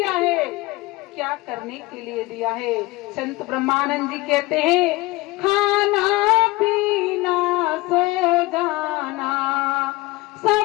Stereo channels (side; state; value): right; quieter; 21.2 dB